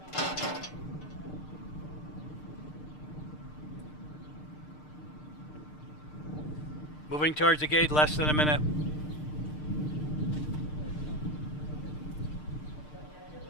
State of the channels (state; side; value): late; right; 6.6 ms